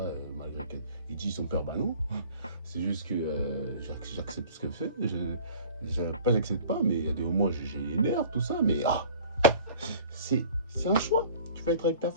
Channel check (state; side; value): inverted; both; correlation -0.46